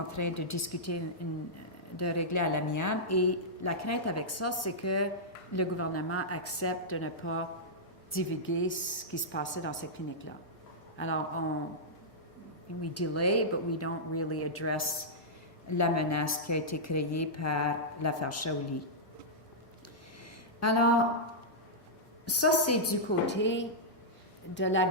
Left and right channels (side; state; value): both; normal; correlation -0.11